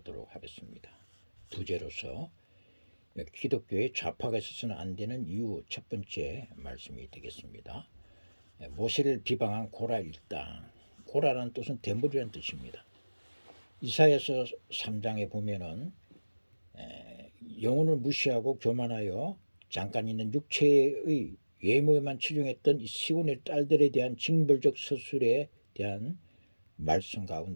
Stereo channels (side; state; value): both; inverted; correlation -1.00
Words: 하겠습니다. 부제로서 기독교의 좌파가 있어서는 안 되는 이유 첫 번째 말씀이 되겠습니다. 모세를 비방한 고랄 땅. 고랄은 뜻은 대물이라는 뜻입니다. 이사야서 3장에 보면은 영혼을 무시하고 교만하여 잠깐 있는 육체의 외모에만 치중했던 이 시온의 딸들에 대한 징벌적 서술에 대한 말씀